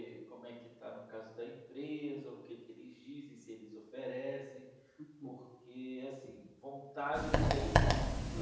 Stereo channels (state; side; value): identical; both; correlation 1.00